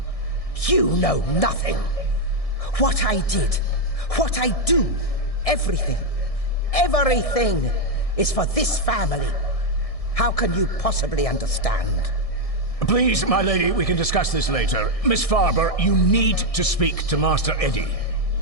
You know nothing. What I did, what I do, everything is for this family. How can you possibly understand? Please, my lady, we can discuss this later. Miss Farber, you need to speak to Master Eddie.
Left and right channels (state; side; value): late; right; 1.6 ms